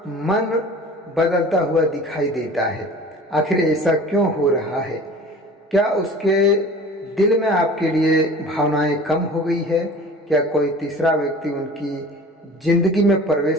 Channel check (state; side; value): normal; both; correlation 0.42